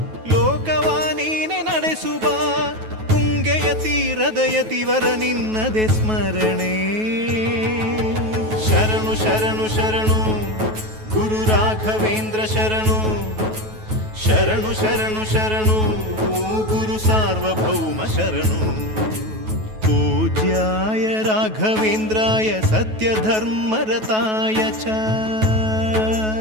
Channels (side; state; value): left; late; 9.3 ms